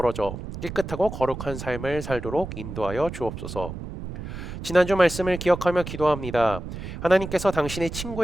깨끗하고 거룩한 삶을 살도록 인도하여 주옵소서. 지난주 말씀을 기억하며 기도합니다. 하나님께서 당신의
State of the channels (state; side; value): noise; right; rumble, 9 dB below the sound